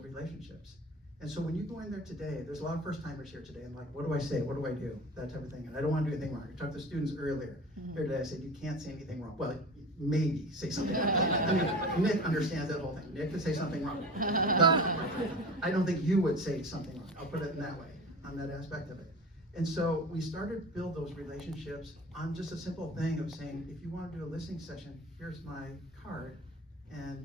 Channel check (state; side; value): normal; both; correlation 0.35